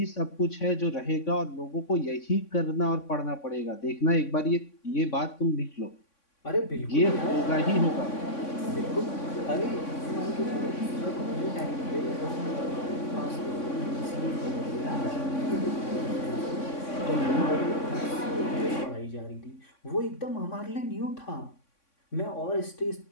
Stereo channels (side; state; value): right; late; 3.6 ms